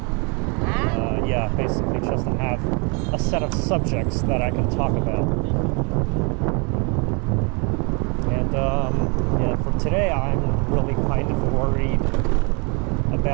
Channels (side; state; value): left; quieter; 33.5 dB